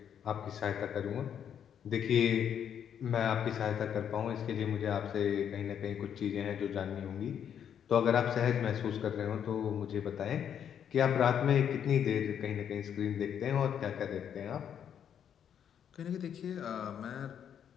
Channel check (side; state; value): right; quieter; 8.7 dB